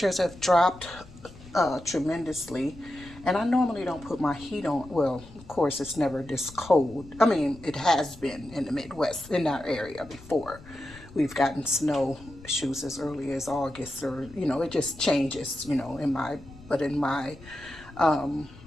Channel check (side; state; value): left; noise; rumble, 19 dB below the sound